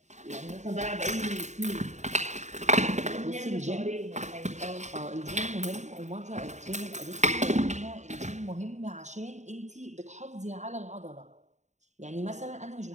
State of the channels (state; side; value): late; left; 0.34 ms